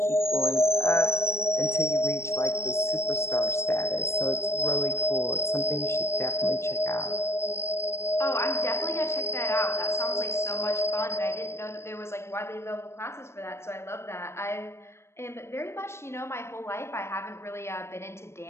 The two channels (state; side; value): late; right; 0.13 ms